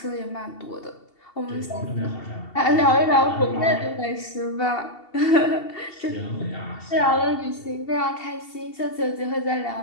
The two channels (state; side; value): late; right; 2.7 ms